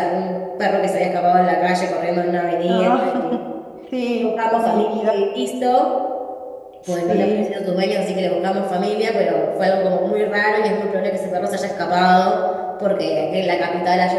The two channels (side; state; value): both; identical; correlation 1.00